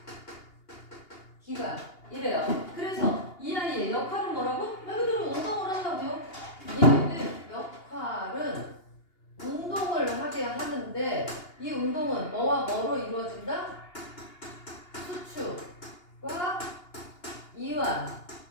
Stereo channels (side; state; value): right; late; 2.8 ms